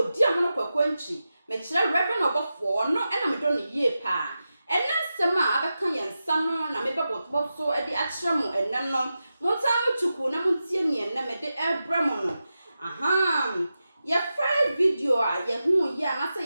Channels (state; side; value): inverted; both; correlation -0.91